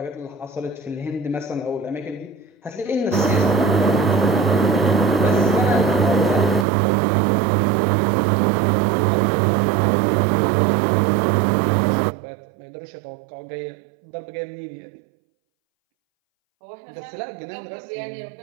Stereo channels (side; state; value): left; drops out; at 6.7 s